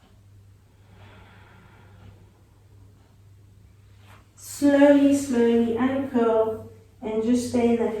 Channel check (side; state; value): both; identical; correlation 1.00